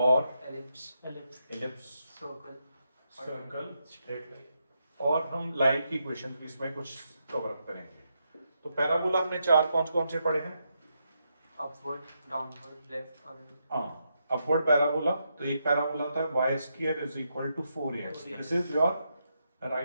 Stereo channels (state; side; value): inverted; both; correlation -0.82